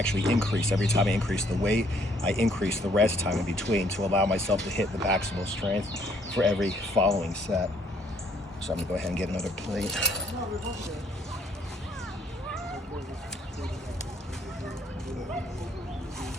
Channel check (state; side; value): normal; both; correlation 0.65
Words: increase. Every time I increase the weight, I increase the rest time in between to allow myself to hit the maximal strength for every following set. So I'm gonna go ahead and get another plate.